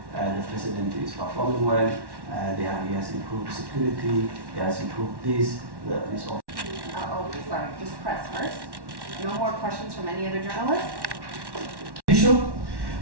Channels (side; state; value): left; late; 1.1 ms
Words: the president is performing well, he has improved security, he has improved this. Sorry, just press first. No more questions from any other journalists?